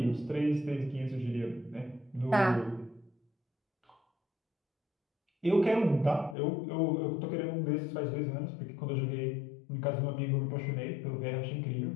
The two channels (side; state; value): right; drops out; at 6.4 s